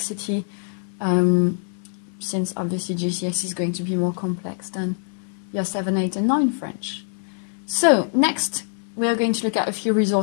since obviously GCSE is going to be more complex than year 7, 8 and 9 French. So next we are going to look at a few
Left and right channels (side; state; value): right; silent; 61 dB below the other